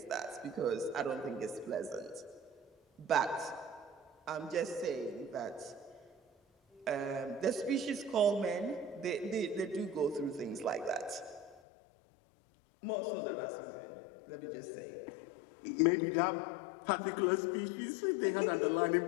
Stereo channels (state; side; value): drops out; right; at 11.6 s